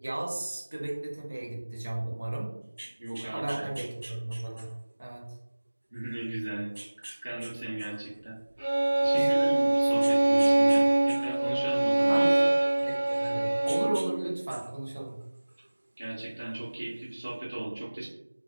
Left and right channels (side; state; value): both; inverted; correlation -1.00